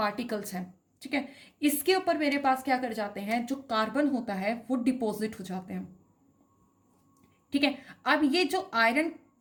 हैं। ठीक है, इसके ऊपर मेरे पास क्या कर जाते हैं, जो कार्बन होता है वो डिपॉजिट हो जाते हैं। ठीक है, अब ये जो आयरन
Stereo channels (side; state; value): both; identical; correlation 1.00